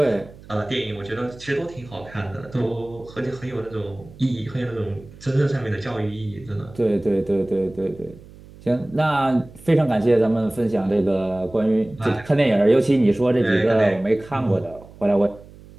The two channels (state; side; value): noise; right; hum, 20 dB below the sound